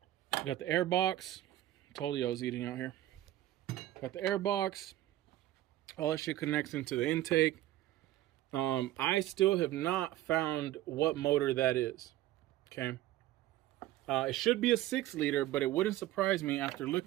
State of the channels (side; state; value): left; quieter; 14.4 dB